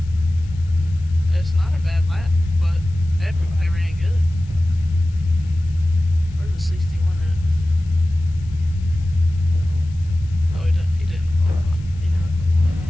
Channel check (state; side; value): noise; left; hiss, 29 dB below the sound